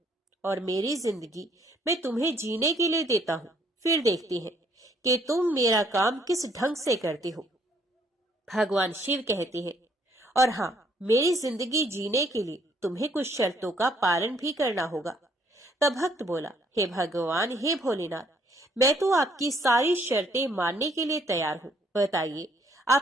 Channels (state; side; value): normal; both; correlation 0.66